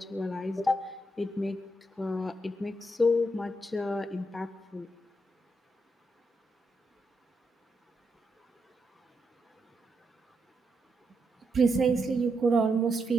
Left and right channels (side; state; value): both; normal; correlation 0.82